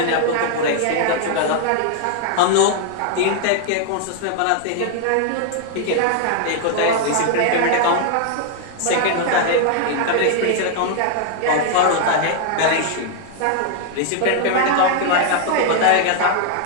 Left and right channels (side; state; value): both; different; correlation 0.00